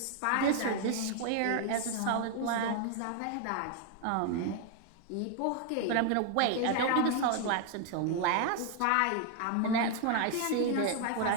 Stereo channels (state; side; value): different; both; correlation 0.00